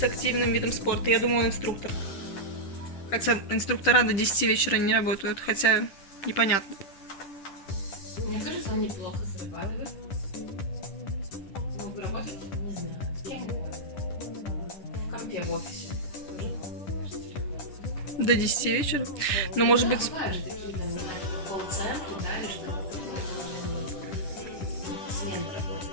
активным видом спорта. Я думаю, он инструктор. Хотя инструктора до 10 вечера не работают, хотя непонятно. Мне кажется, он неплохо зарабатывает. Мог бы работать, не знаю, кем угодно. В компе в офисе. До 10 вечера? Ну, может быть... Бывают же такие, там, не знаю, колл-центры, да, или что-то такое. Смены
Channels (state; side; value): late; right; 10 ms